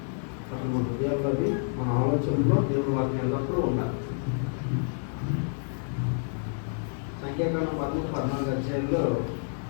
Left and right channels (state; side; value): silent; right; 59 dB below the other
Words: అసలు మన హృదయాల్లో అది మన ఆలోచనలో దేవుడి వాక్యం ఎల్లప్పుడూ ఉండాలి. సంఖ్యాకాండం 13-14 అధ్యాయంలో